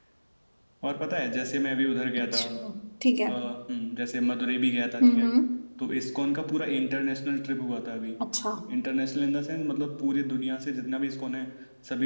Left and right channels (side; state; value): both; inverted; correlation -1.00